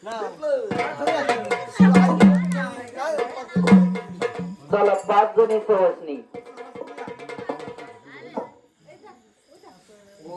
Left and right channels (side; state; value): both; identical; correlation 1.00